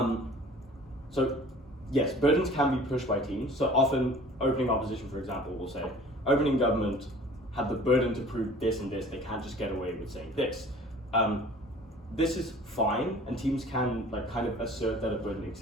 so yes, burdens can be pushed by teams. So often opening opposition, for example, will say opening government had the burden to prove this and this. They can't just get away with saying this. This is fine, and teams can like kind of assert that a burden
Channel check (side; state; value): both; normal; correlation 0.47